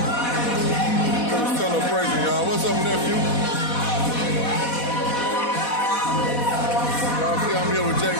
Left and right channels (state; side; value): late; right; 4.1 ms